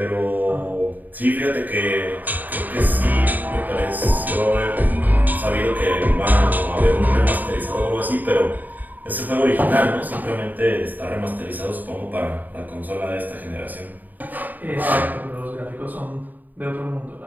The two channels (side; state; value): left; late; 0.085 ms